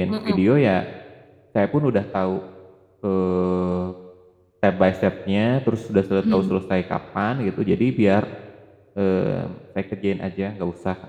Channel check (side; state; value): both; identical; correlation 1.00